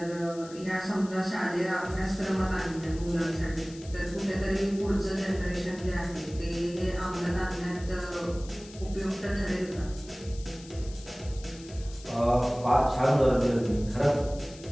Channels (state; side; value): noise; left; hiss, 19 dB below the sound